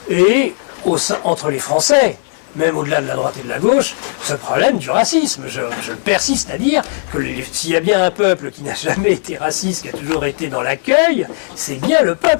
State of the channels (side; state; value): right; silent; digital silence